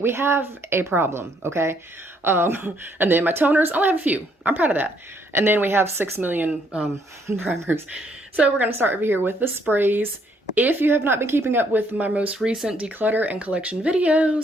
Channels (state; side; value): normal; both; correlation 0.69